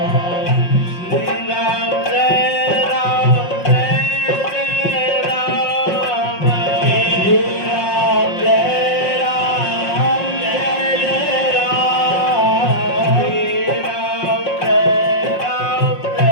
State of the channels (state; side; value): late; right; 5.5 ms